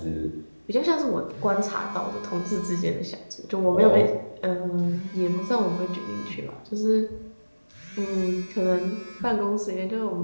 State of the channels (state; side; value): inverted; both; correlation -1.00